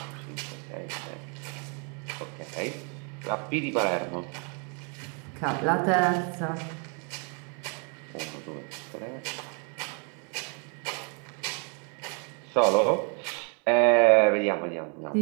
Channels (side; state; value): left; quieter; 37.7 dB